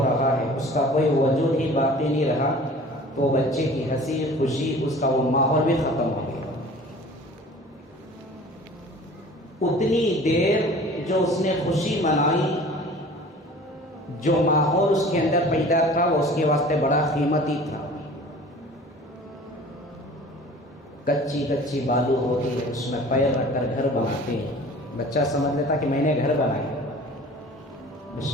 رہا ہے، اس کا کوئی وجود ہی باقی نہیں رہا، تو بچے کی ہنسی خوشی، اس کا وہ ماحول بھی ختم ہو گیا. اتنی دیر جو اس نے خوشی منائی، جو ماحول اس کے اندر پیدا تھا وہ اس کے واسطے بڑا قیمتی تھا۔ کچی کچی بالو ہوتی ہے، اس میں پیر رکھ کر گھر بناتے ہیں۔ بچہ سمجھ لیتا کہ میں نے گھر بنایا۔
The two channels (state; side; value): normal; both; correlation 0.44